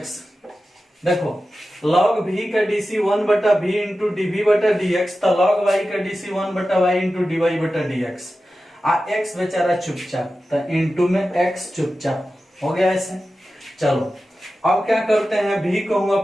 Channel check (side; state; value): both; normal; correlation 0.93